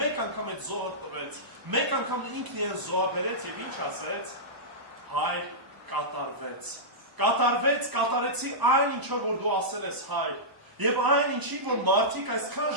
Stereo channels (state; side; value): late; left; 1.0 ms